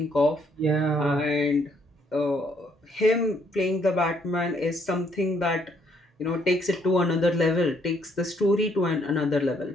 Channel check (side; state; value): both; normal; correlation 0.69